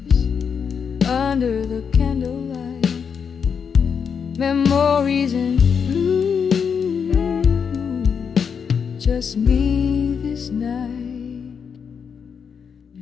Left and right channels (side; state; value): right; quieter; 6.6 dB